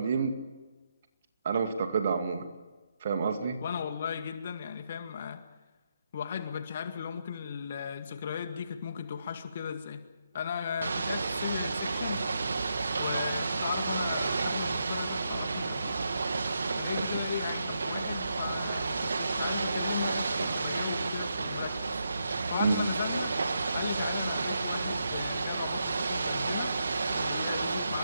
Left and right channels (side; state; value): both; inverted; correlation -0.81